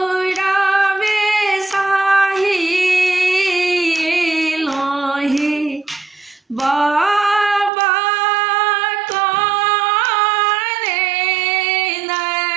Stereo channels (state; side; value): drops out; left; at 7.7 s